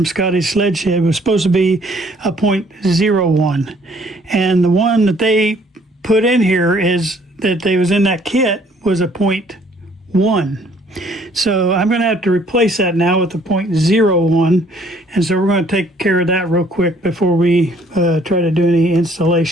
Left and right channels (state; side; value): normal; both; correlation 0.61